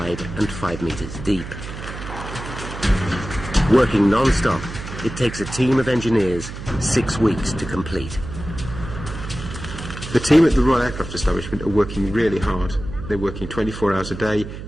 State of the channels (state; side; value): noise; right; hum, 10 dB below the sound